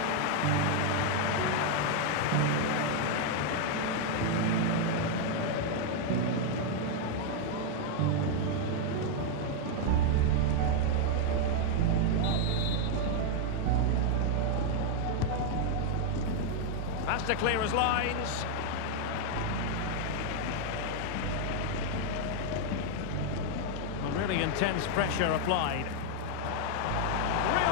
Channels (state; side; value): different; both; correlation 0.00